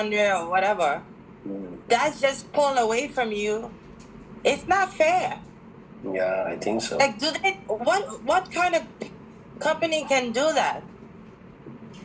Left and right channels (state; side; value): identical; both; correlation 1.00